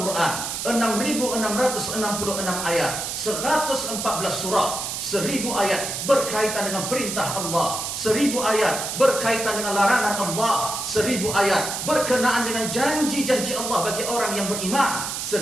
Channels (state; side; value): noise; right; hiss, 4 dB below the sound